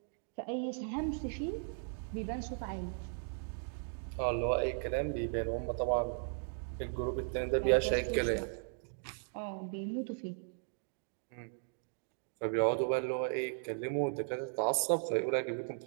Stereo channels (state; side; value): silent; left; 53 dB below the other